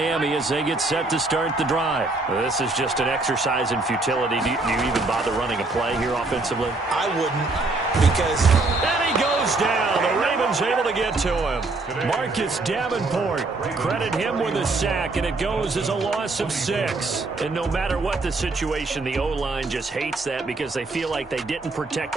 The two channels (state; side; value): quieter; left; 3.3 dB